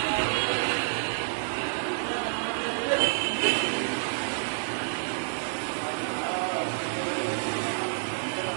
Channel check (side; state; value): left; silent; digital silence